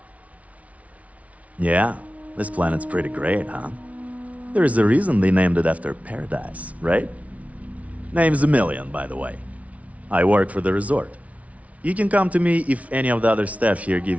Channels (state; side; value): late; left; 0.067 ms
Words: Yeah, this planet's pretty great, huh? There's a reason they named it after paradise, right? Name's a million, by the way. I work for the resort. You can come to me if any of the other staff here